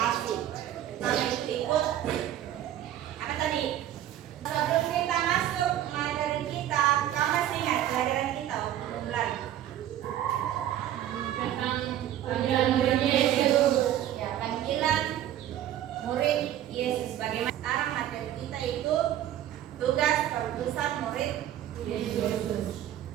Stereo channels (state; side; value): quieter; left; 11.9 dB